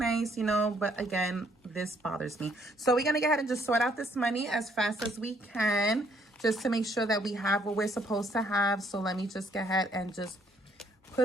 you know, but again, this bothers me. So we're going to go ahead and just sort out this money as fast as we can, just to make sure that we have what we're supposed to have. So let me just go ahead and just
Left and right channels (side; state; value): both; normal; correlation 0.67